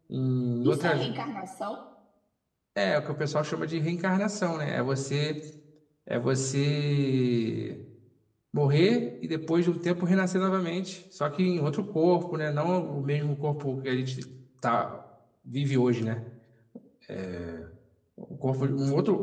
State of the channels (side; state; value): both; identical; correlation 1.00